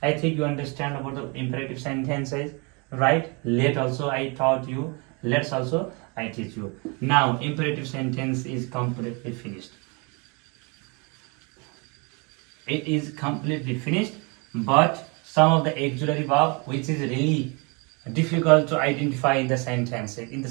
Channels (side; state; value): left; quieter; 31.1 dB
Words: I think you understand about the imperative sentences, right? Let also I taught you. Let's also I teach you. Now imperative sentence is completely finished. It is completely finished, but some of the auxiliary verb which is really difficult to identify in the sentences. In the